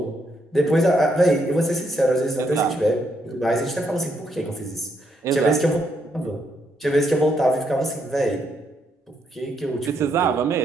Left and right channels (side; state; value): both; normal; correlation 0.76